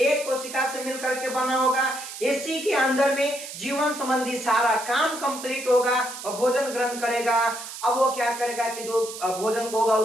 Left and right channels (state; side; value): noise; right; hiss, 11 dB below the sound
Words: कोशिका से मिलकर के बना होगा। इसी के अंदर में जीवन संबंधी सारा काम कंप्लीट होगा और भोजन ग्रहण करेगा। अब वो क्या करेगा कि जो भोजन होगा